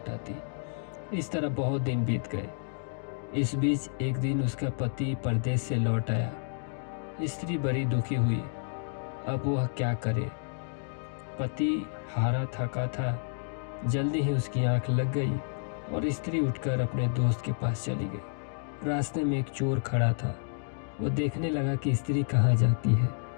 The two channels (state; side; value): silent; right; digital silence